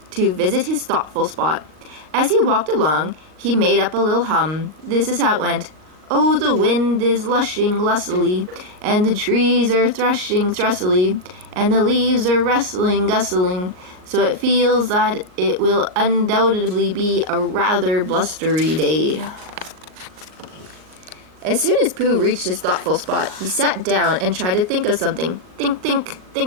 to visit his thoughtful spot. As he walked along, he made up a little hum. This is how it went. Oh, the wind is lushing lustily, and the trees are threshing thrussily, and the leaves are rustling gustling, so it feels that it will undoubtedly be a rather blustery day. As soon as Pooh reached his thoughtful spot, he sat down and tried to think of something. Think, think,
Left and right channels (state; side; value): late; left; 39 ms